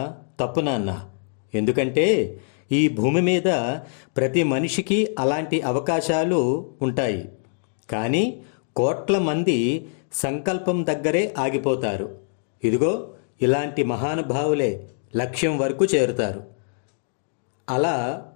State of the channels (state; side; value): silent; right; digital silence